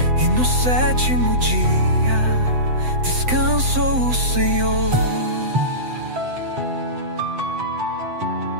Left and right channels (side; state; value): left; late; 7.9 ms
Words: E no sétimo dia descansou o Senhor.